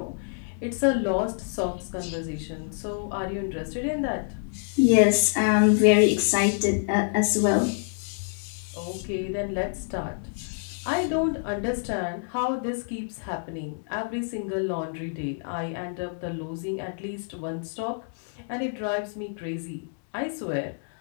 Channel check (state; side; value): silent; right; digital silence